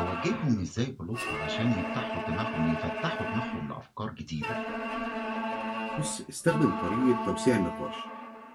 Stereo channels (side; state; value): both; identical; correlation 1.00